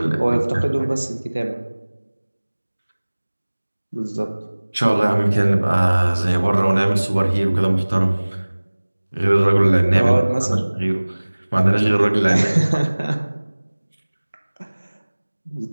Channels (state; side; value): inverted; both; correlation -1.00